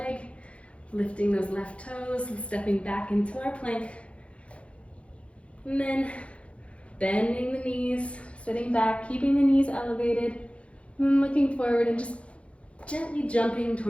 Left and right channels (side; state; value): right; late; 0.061 ms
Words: lifting those left toes and stepping back into our plank. And then bending the knees, sitting back, keeping the knees elevated, and then looking forward and just gently jumping